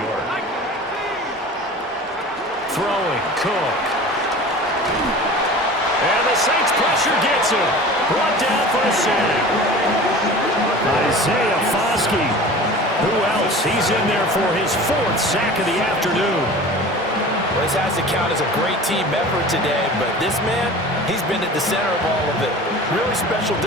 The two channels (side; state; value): both; normal; correlation 0.38